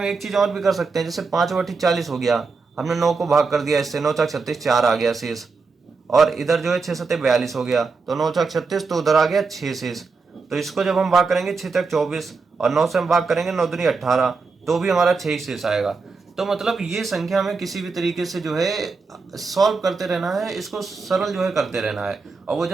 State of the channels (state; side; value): quieter; left; 4.5 dB